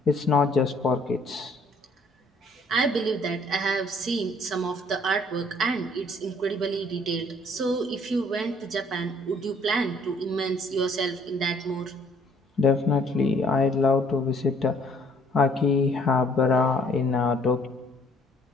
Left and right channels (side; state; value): both; normal; correlation 0.61